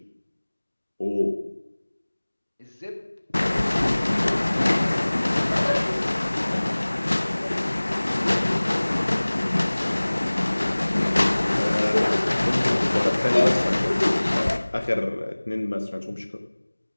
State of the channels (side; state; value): both; inverted; correlation -1.00